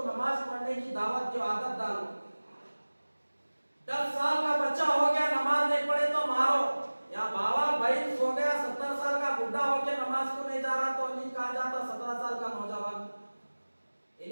नमाज पढ़ने की दावत की आदत डालो। 10 साल का बच्चा हो गया नमाज नहीं पढ़े तो मारो, या बाबा भाई हो गया 70 साल का बुढ़ा हो गया नमाज को नहीं जा रहा तो नहीं कहा जाता 17 साल का नौजवान।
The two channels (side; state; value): both; inverted; correlation -1.00